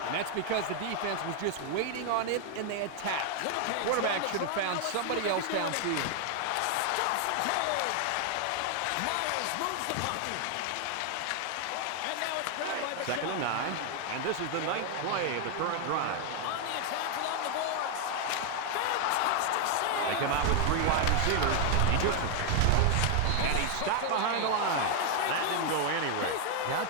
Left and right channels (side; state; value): both; different; correlation 0.00